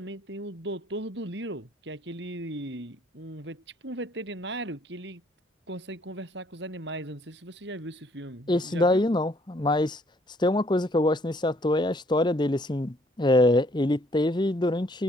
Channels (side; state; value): both; normal; correlation 0.64